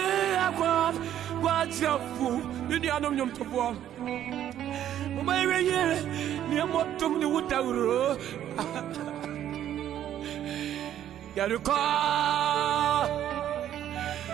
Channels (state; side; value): quieter; left; 11.1 dB